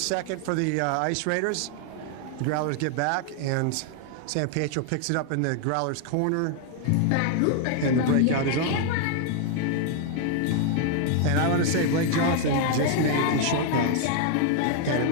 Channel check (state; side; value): different; both; correlation 0.00